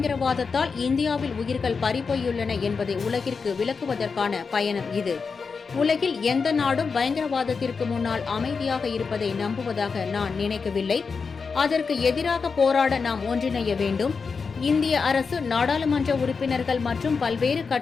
இந்தியாவில் உயிர்கள் பறிபோயுள்ளன என்பதை உலகிற்கு விளக்குவதற்கான பயணம் இது. உலகில் எந்த நாடும் பயங்கரவாதத்திற்கு முன்னால் அமைதியாக இருப்பதை நம்புவதாக நான் நினைக்கவில்லை. அதற்கு எதிராக போராட நாம் ஒன்றிணைய வேண்டும். இந்திய அரசு நாடாளுமன்ற உறுப்பினர்கள் மற்றும் பல்வேறு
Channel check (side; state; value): right; quieter; 5.1 dB